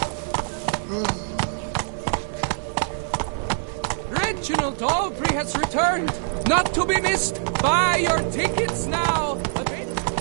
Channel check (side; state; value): left; silent; 60 dB below the other